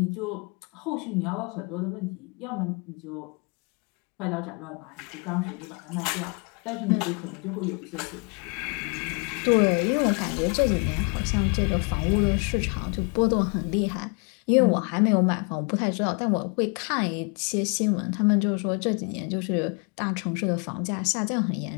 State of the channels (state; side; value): quieter; right; 34.3 dB